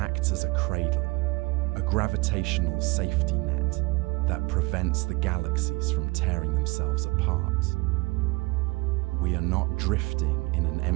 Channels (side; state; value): left; quieter; 25.8 dB